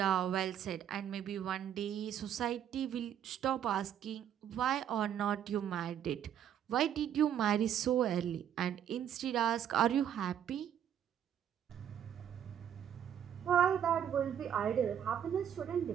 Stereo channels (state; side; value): quieter; left; 9.6 dB